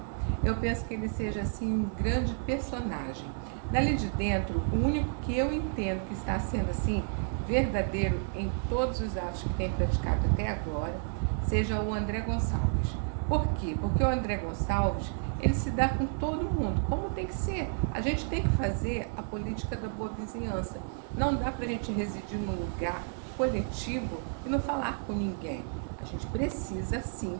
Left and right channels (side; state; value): left; silent; 57 dB below the other